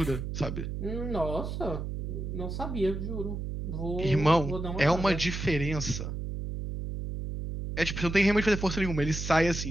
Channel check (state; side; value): noise; right; hum, 5 dB below the sound